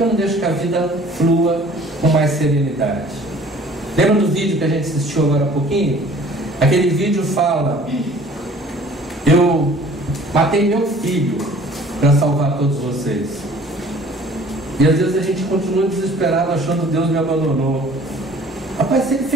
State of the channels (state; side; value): normal; both; correlation 0.51